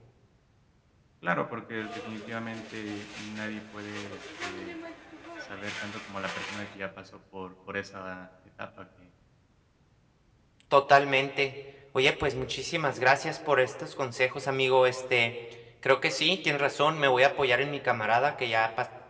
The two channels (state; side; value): identical; both; correlation 1.00